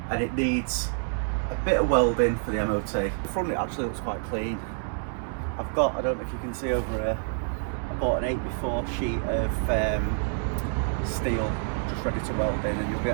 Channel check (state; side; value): silent; left; 59 dB below the other